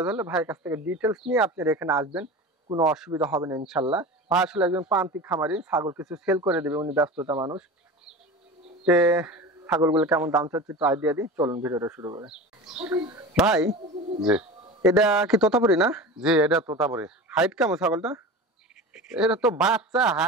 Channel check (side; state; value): both; normal; correlation 0.32